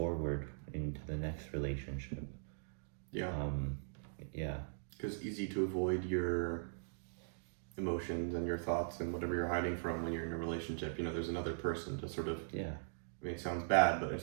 into the next relationship. Yeah. Yeah. Because it's easy to avoid your emotions and your thoughts and whatever you're hiding from when you're in a relationship. There's another person to sort of... Yeah. I mean, it sounds bad, but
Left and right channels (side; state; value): left; silent; digital silence